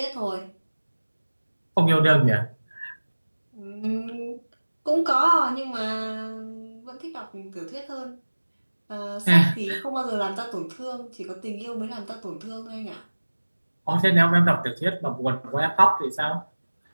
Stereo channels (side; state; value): both; inverted; correlation -1.00